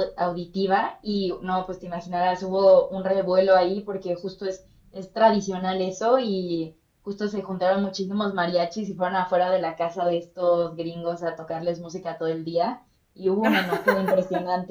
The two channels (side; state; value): both; identical; correlation 1.00